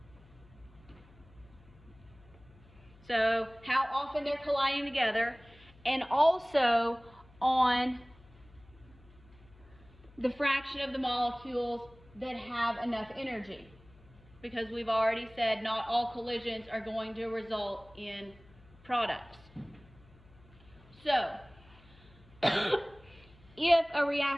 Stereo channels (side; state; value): left; noise; hum, 25 dB below the sound